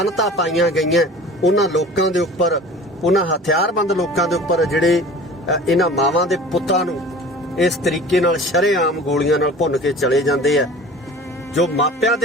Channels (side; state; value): both; normal; correlation 0.42